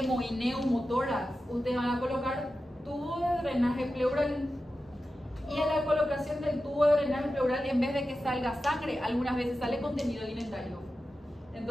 y neumotórax, ustedes van a colocar tubo de drenaje pleural, y en la colocación del tubo de drenaje pleural, en vez de que salga sangre, algunas veces sale contenido alimentario.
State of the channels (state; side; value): normal; both; correlation 0.92